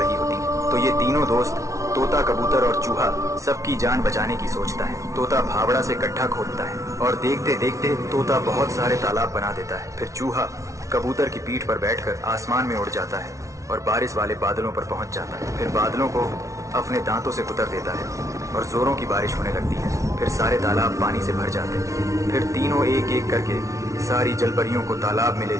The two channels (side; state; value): left; late; 0.15 ms